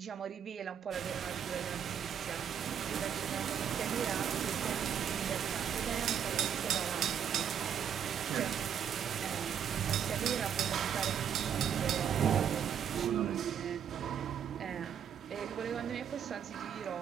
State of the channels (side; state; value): left; quieter; 8.5 dB